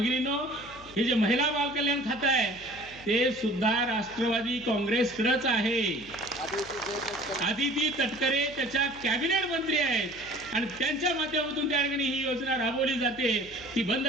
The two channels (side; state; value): left; noise; hum, 21 dB below the sound